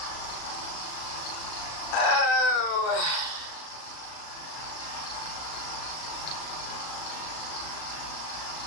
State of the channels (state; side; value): late; right; 37 ms